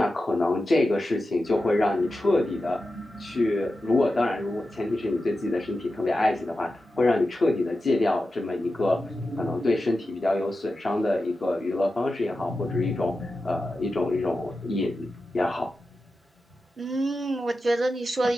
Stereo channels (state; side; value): normal; both; correlation 0.92